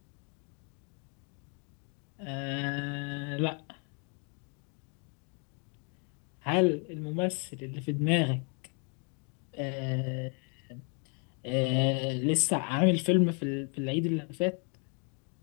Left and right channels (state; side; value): quieter; right; 38.8 dB